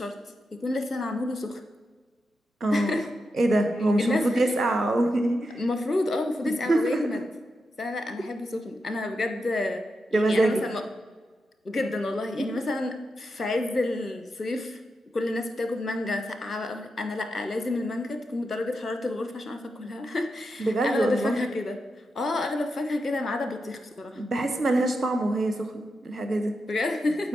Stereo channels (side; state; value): both; normal; correlation 0.87